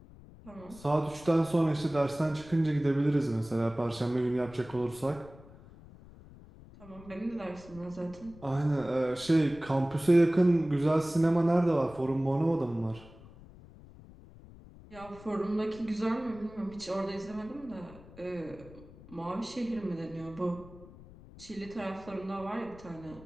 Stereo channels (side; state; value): left; noise; rumble, 20 dB below the sound